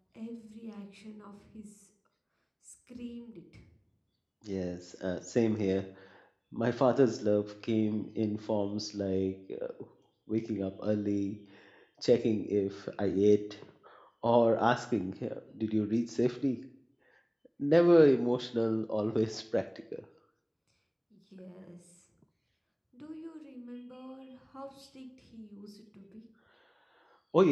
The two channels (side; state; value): both; identical; correlation 1.00